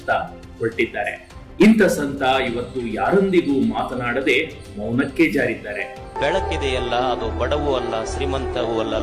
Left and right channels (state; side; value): identical; both; correlation 1.00